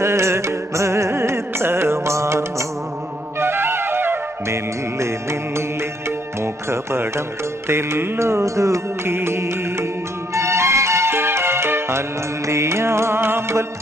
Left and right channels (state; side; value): normal; both; correlation 0.71